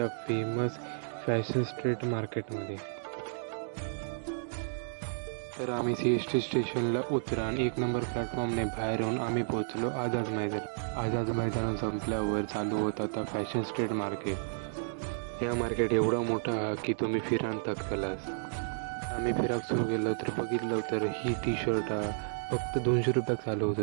फेमस फॅशन स्ट्रीट मार्केटमध्ये. तर आम्ही CST स्टेशनला उतरा आणि 1 नंबर प्लॅटफॉर्मने बाहेर येऊन आम्ही पोहोचलो आझाद मैदान. आझाद मैदान संपल्यावर चालू होता आता फॅशन स्ट्रीट मार्केट. या मार्केट एवढा मोठा हा की तुम्ही फिरान थकतलास. आम्ही फिराक सुरू केलं तर बघितलं तर ही टी शर्ट फक्त 200 रुपयात चालू होत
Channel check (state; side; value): silent; left; digital silence